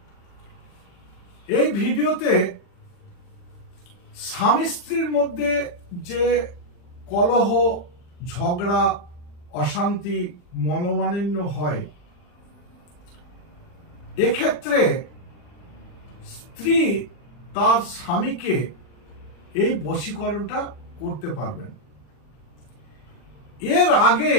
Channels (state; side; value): late; right; 40 ms